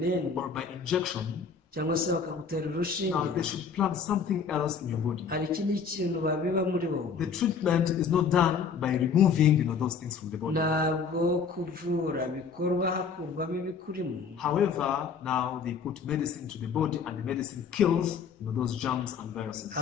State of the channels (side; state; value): right; quieter; 5.9 dB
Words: or by injection. cyangwa se bakagutera Now urushinge. they should plant something else in your body. hari ikindi kintu babiba muri wowe. The treatment is not done by removing those things from the body. ntabwo kuvura bikorwa hakurwamo ibikurimo. However, now they put medicine to the body and the medicine kills those germs and viruses.